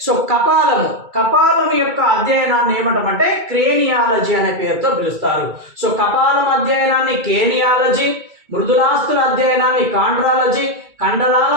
సో కపాలం యొక్క అధ్యయనాన్ని ఏమంటామంటే క్రేనియాలజీ అనే పేరుతో పిలుస్తారు. సో కపాలం అధ్యయనాన్ని క్రేనియాలజీ, మృదులాస్థుల అధ్యయనాన్ని కాండ్రాలజీ, కండరాల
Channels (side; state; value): left; late; 2.3 ms